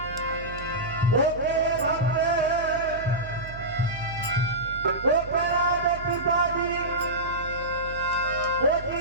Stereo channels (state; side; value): noise; right; hum, 13 dB below the sound